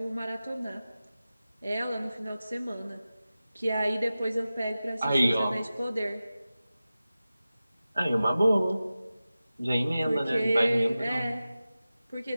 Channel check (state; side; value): inverted; both; correlation -0.95